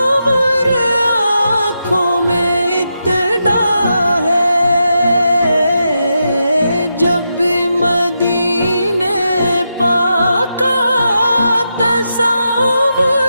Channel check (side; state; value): both; inverted; correlation -0.86